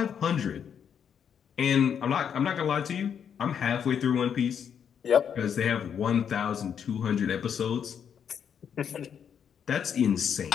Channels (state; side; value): quieter; right; 7.9 dB